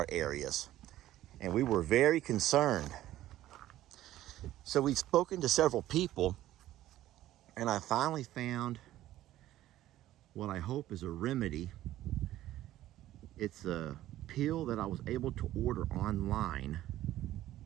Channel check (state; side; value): quieter; left; 14.1 dB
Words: areas, and we were very concerned. So we've spoken to several people, and I finally found what I hope is a remedy. It's a pill that I was able to order online,